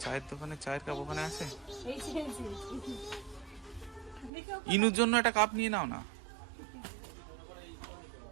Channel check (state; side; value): drops out; left; at 4.3 s